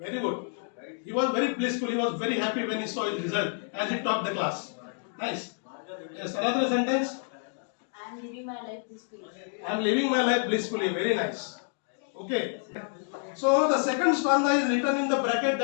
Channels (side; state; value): right; silent; 59 dB below the other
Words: good. He was very blissful. He was very happy when he saw his result as he topped the class. Nice. Yes, another sentence. I am living my life peacefully. I am living my life blissfully. Very nice. Okay. So the second stanza is written in the bracket,